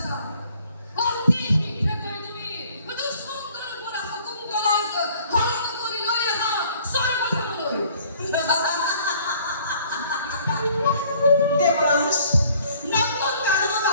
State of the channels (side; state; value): both; inverted; correlation -0.57